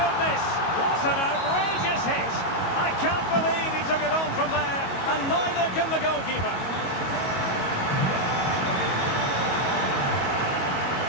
What an outrageous hit! I can't believe he took it on from there, and neither can the goalkeeper.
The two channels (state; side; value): late; right; 22 ms